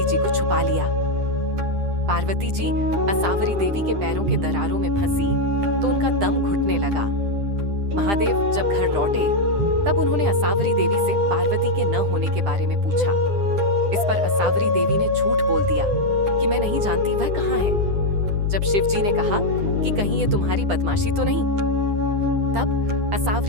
जी को छुपा लिया। पार्वती जी असावरी देवी के पैरों के दरारों में फंसी तो उनका दम घुटने लगा। महादेव जब घर लौटे तब उन्होंने असावरी देवी से पार्वती के न होने के बारे में पूछा। इस पर असावरी देवी ने झूठ बोल दिया कि मैं नहीं जानती वह कहाँ है। जब शिव जी ने कहा कि कहीं ये तुम्हारी बदमाशी तो नहीं, तब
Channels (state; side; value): late; left; 9.9 ms